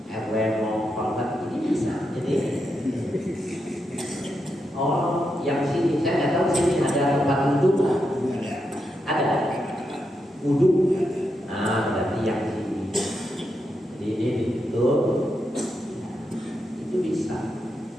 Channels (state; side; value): normal; both; correlation 0.84